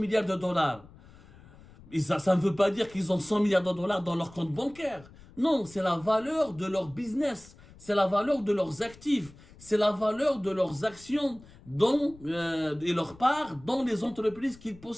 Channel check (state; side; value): noise; left; rumble, 22 dB below the sound